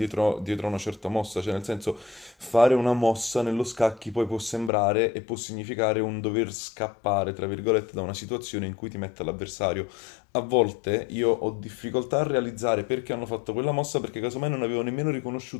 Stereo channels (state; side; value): drops out; right; at 4.7 s